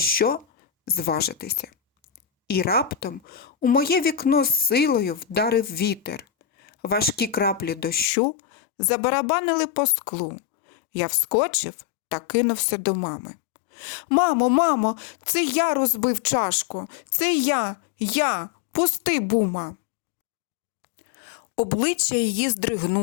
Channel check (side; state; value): right; drops out; at 8.1 s